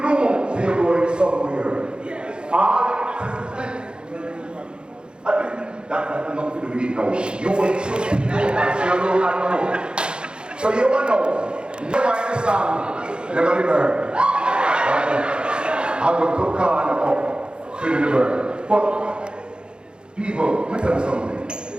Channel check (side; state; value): left; late; 0.051 ms